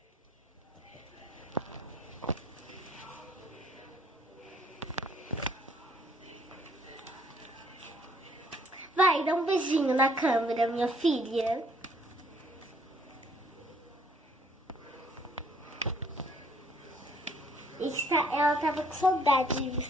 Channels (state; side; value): normal; both; correlation 0.62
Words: Vai, dá um beijinho na câmera, minha filha. Ela tava com saudade de